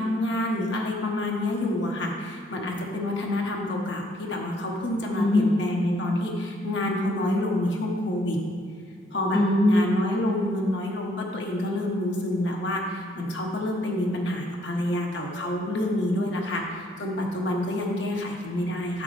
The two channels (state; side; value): normal; both; correlation 0.67